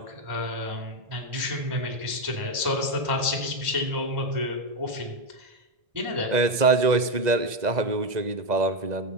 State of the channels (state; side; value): late; left; 2.0 ms